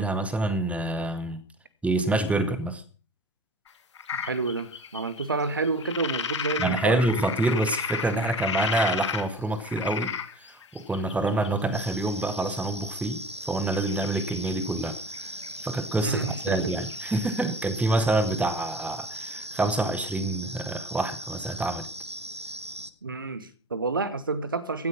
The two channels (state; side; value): normal; both; correlation 0.42